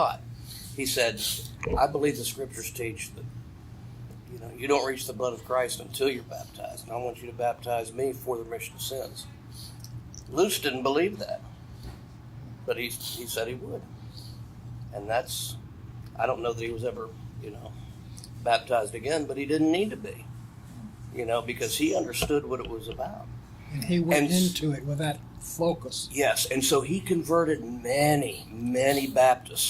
He said, I believe the scriptures teach that, you don't reach the blood of Christ until you're baptized. And I want you to baptize me for the remission of sins. Luce didn't believe that. But he said he would. And I don't know that he was ever, baptized again, but he didn't need to be. Because he understood what it was about. And he went into it with that focus. Yes, and so he converted many, many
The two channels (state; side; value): identical; both; correlation 1.00